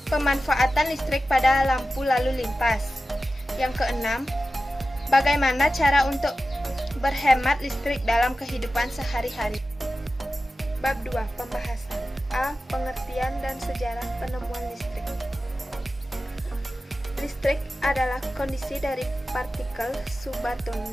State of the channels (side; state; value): both; normal; correlation 0.94